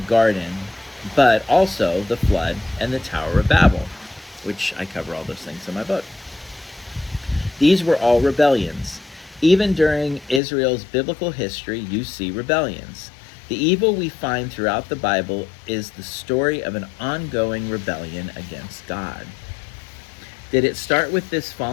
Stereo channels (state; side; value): drops out; right; at 10.4 s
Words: but also the flood and the Tower of Babel, which I cover all those things in my book. These were all rebellions. Even during Israel's biblical history, you see rebellions. The evil we find throughout the Bible is the story of an ongoing rebellion against God. Did it start with this